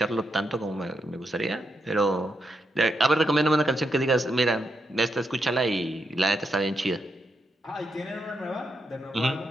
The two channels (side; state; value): both; normal; correlation 0.83